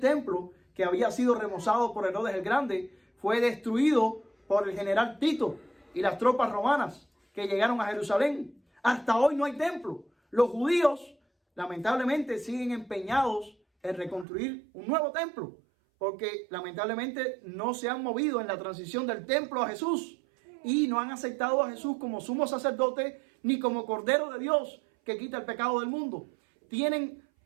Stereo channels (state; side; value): drops out; left; at 14.2 s